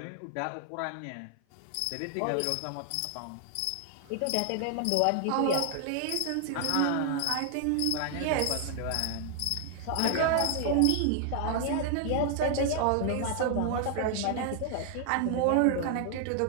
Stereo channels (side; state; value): both; different; correlation 0.00